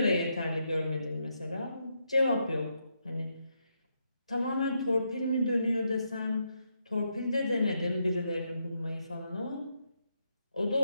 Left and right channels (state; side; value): inverted; both; correlation -0.80